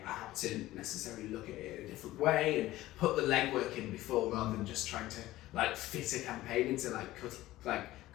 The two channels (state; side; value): quieter; right; 16.3 dB